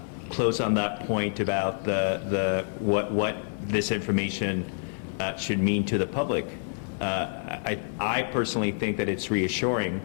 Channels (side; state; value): right; silent; 55 dB below the other